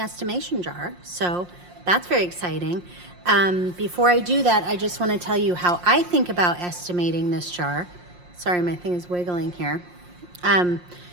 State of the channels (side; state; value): left; late; 5.6 ms